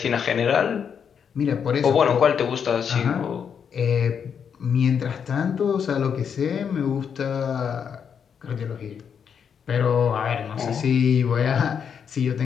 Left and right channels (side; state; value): right; quieter; 7.3 dB